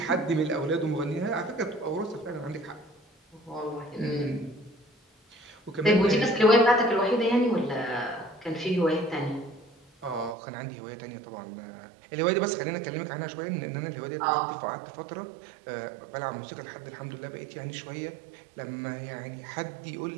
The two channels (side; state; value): left; drops out; at 10.4 s